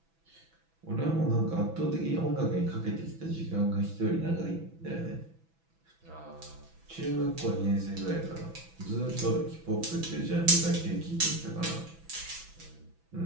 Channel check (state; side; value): late; left; 6.1 ms